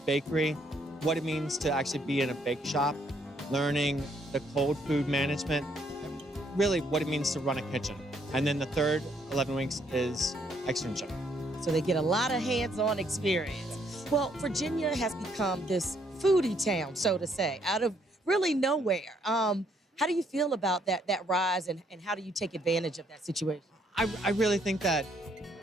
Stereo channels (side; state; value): both; normal; correlation 0.69